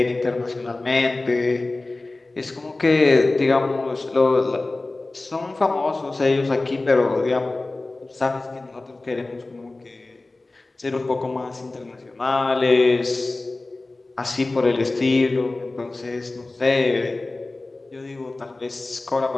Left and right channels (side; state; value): right; quieter; 3.1 dB